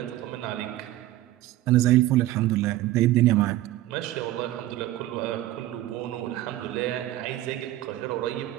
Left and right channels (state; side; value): quieter; left; 15.2 dB